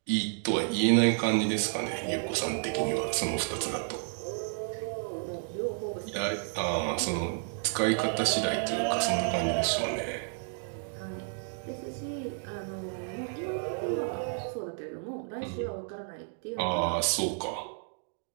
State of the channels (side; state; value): left; silent; 57 dB below the other